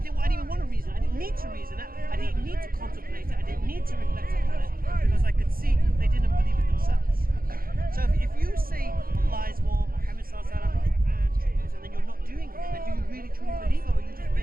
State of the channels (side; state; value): left; late; 0.42 ms